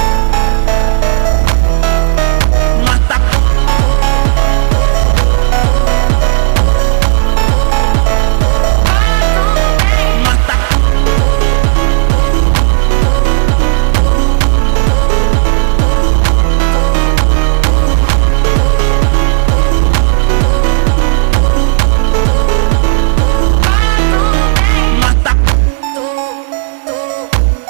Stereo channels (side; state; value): left; silent; digital silence